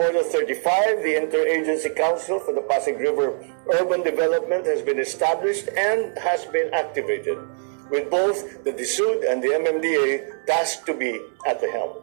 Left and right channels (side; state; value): left; silent; 63 dB below the other